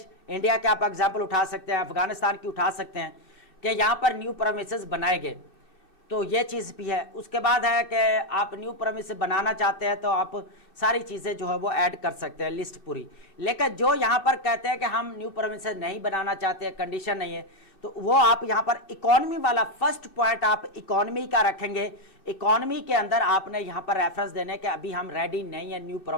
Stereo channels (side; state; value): right; late; 5.2 ms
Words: इंडिया के आप एग्जांपल उठा सकते हैं, अफगानिस्तान की उठा सकते हैं कि यहां पर न्यू प्रोविंसेस बनाए गए, तो ये चीज़ भी है। उसके बाद है कि आप न्यू प्रोविंस बनाना चाहते हैं तो आप सारी चीज़ें जो है वो ऐड कर सकते हैं, लिस्ट पूरी। लेकिन जो यहाँ पर कहते हैं कि हम न्यू प्रोविंस नहीं बनाना चाहते हैं, कंडीशन नहीं है, तो वो आप यहाँ पर इकोनॉमी वाला फर्स्ट पॉइंट आप इकोनॉमी का रखेंगे। इकोनॉमी के अंदर आपने यहाँ पर रेफरेंस देने के अभी हम रेडी नहीं है न्यू